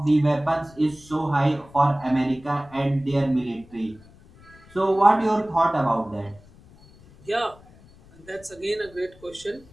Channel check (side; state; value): left; noise; rumble, 25 dB below the sound